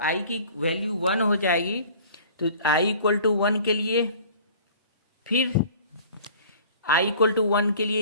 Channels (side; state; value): both; inverted; correlation -0.47